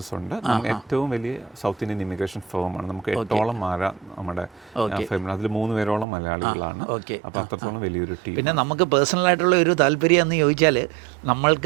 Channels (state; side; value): drops out; left; at 6.1 s